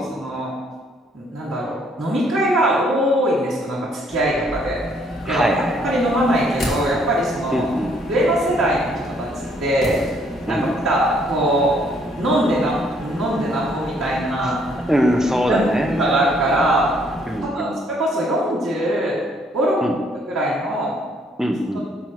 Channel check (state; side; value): normal; both; correlation 0.66